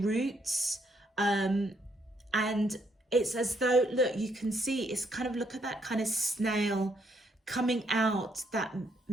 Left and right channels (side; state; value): both; normal; correlation 0.73